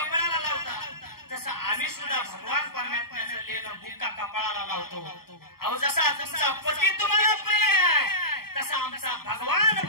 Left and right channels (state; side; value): late; right; 0.94 ms